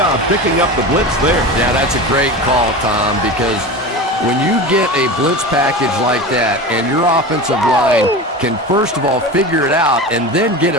picking up the blitz there. Yeah, that's a great call, Tom, because when you get a blitz package like that and your offensive line can first of all figure it out and then get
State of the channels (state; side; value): normal; both; correlation 0.28